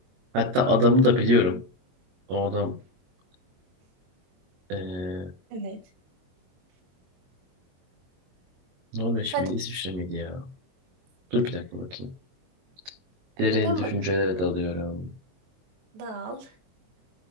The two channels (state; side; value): late; left; 22 ms